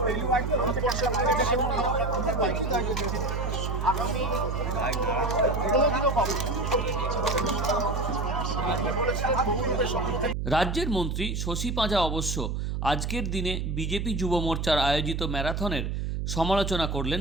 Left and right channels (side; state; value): right; noise; hum, 2 dB below the sound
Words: আগামী কোনোদিনও পাবো রাজ্যের মন্ত্রী শশী পাঁজা অবশ্য আজকের দিনে বিজেপি যুব মোর্চার আয়োজিত ম্যারাথনের সমালোচনা